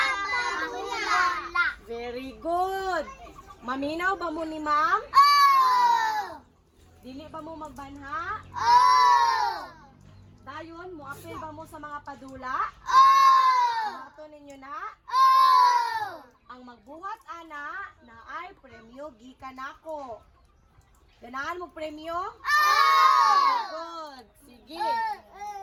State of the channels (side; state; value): both; identical; correlation 1.00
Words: padula. Very good. Maminaw ba mo ni ma'am? Oh! Dili ba mo magbanha? Oh! Dayon, mo apil ba mo sa mga padula? Oh! Mato ninyo na? Oh! Ang magbuhat ana na ay premyo gikan nako. Ganahan mo premyo? Oh! Good. Sige.